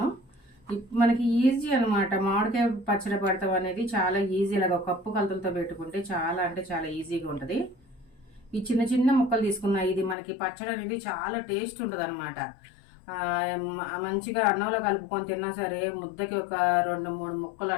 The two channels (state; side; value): drops out; right; at 10.2 s